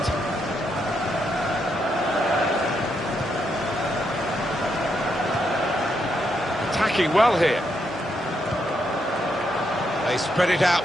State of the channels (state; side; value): normal; both; correlation 0.79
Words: Attacking well here. They spread it